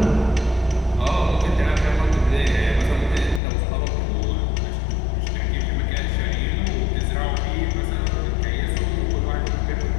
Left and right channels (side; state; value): right; drops out; at 3.4 s